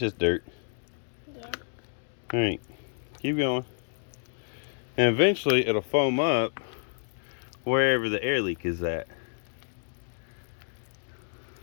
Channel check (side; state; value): right; silent; digital silence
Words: just dirt. Yeah. All right, keep going. And eventually it'll foam up wherever the air leak is at.